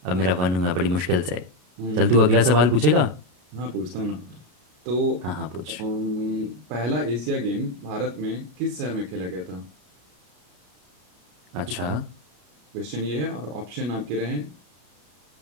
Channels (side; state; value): left; late; 33 ms